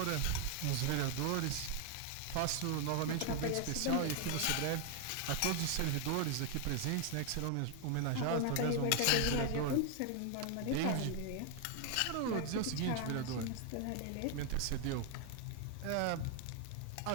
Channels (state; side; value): different; both; correlation 0.00